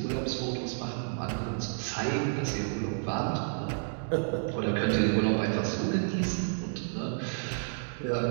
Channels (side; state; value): left; silent; digital silence